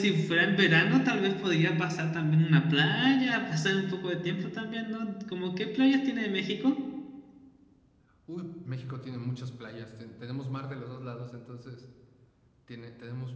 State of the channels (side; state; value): both; identical; correlation 1.00